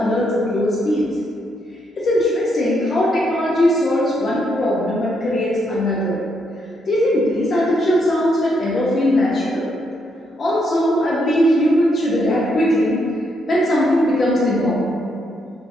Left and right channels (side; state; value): both; normal; correlation 0.77